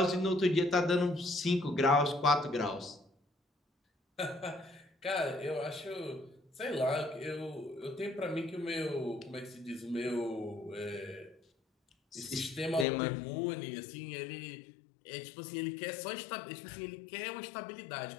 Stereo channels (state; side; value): drops out; right; at 12.9 s